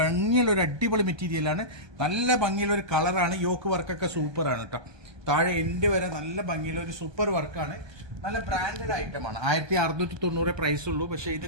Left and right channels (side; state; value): left; late; 1.2 ms